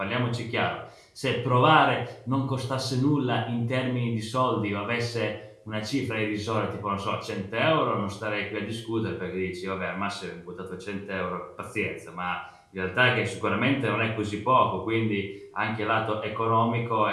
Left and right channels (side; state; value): both; identical; correlation 1.00